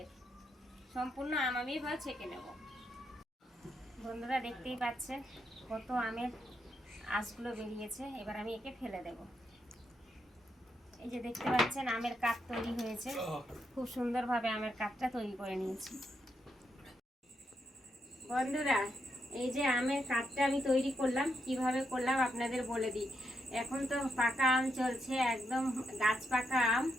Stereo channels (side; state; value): both; normal; correlation 0.81